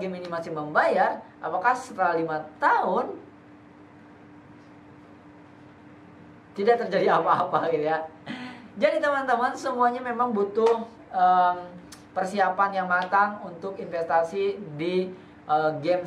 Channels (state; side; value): identical; both; correlation 1.00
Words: game ini masih membayar? Apakah setelah 5 tahun tidak terjadi apa-apa gitu ya? Jadi teman-teman, semuanya memang butuh persiapan yang matang untuk investasi di game